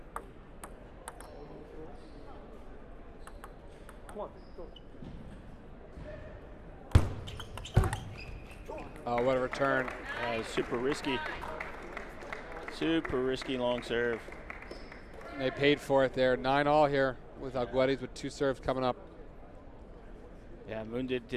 Oh, what a return. Super risky. Super risky long serve. They paid for it there. 9-all here with Alguedes with 2 serves coming up. Yeah, Moon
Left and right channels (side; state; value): both; identical; correlation 1.00